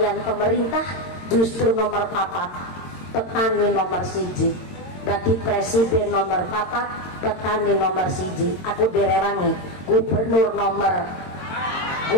pemerintah justru nomor 4. Petani nomor 1, berarti presiden nomor 4, petani nomor 1. Aku direwangi gubernur nomor,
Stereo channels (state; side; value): late; right; 22 ms